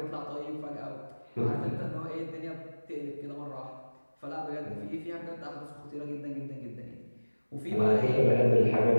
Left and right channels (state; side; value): inverted; both; correlation -1.00